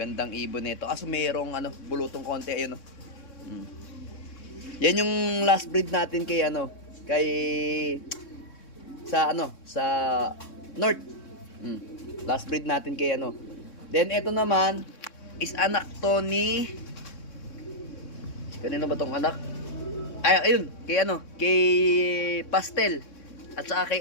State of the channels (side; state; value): right; late; 3.6 ms